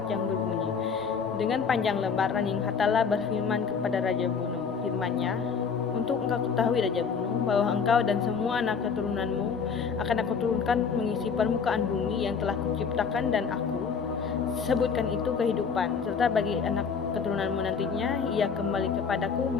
yang berbunyi, dengan panjang lebar Ranjing Hatala berfirman kepada Raja Bulu, firman-Nya, untuk engkau ketahui Raja Bulu, bahwa engkau dan semua anak keturunanmu akan aku turunkan mengisi permukaan bumi yang telah kuciptakan, dan aku sebutkan itu kehidupan, serta bagi anak keturunanmu nantinya ia kembali kepadaku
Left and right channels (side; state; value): right; quieter; 6.0 dB